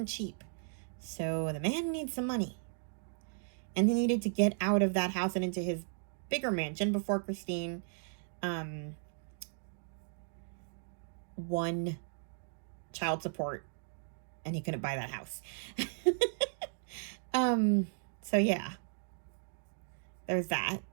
cheap. So the man needs some money. And he needed to get out of that house and into his bigger mansion before Christine won child support, and he couldn't buy that house. So yeah, there's that.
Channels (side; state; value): left; silent; digital silence